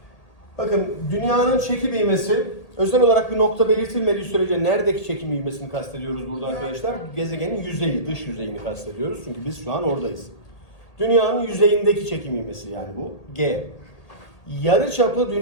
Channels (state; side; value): late; right; 1.8 ms